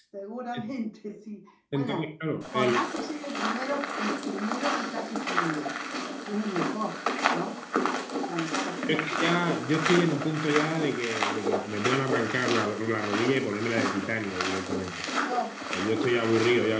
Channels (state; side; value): identical; both; correlation 1.00